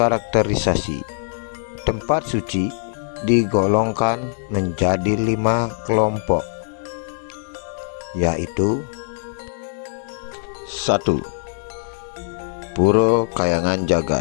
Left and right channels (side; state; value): right; silent; digital silence